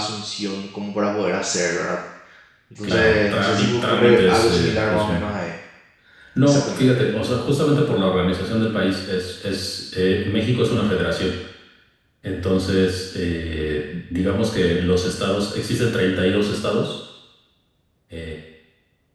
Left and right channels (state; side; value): identical; both; correlation 1.00